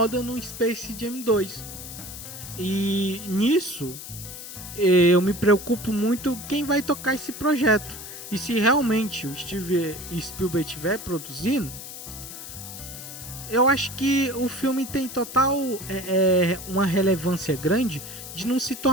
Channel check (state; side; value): noise; left; hiss, 11 dB below the sound